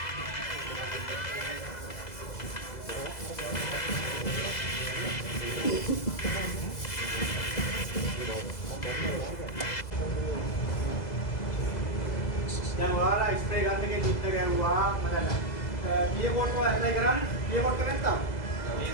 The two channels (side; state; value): right; late; 2.0 ms